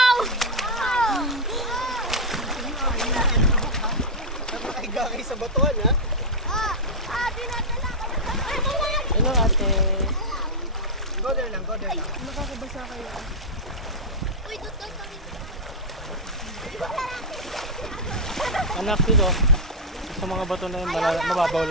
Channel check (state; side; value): normal; both; correlation -0.03